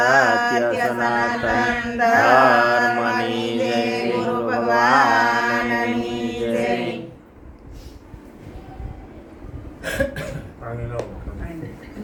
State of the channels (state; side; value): identical; both; correlation 1.00